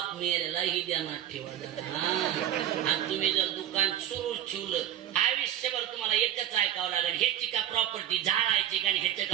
मेल्यालाही ध्यानात ठेवा. आणि तुम्ही जर दुकान सुरू ठेवलं आयुष्यभर तुम्हाला एकच ऐकावं लागेल. ह्याची का प्रॉपर्टी झाडायची का? ह्याचं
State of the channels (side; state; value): left; quieter; 11.4 dB